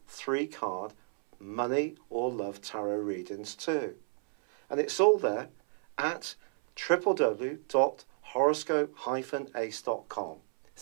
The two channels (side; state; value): left; silent; 57 dB below the other